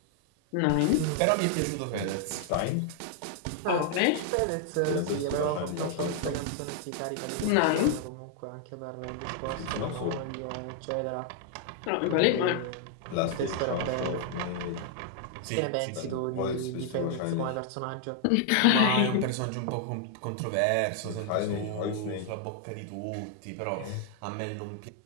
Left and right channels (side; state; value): both; different; correlation 0.00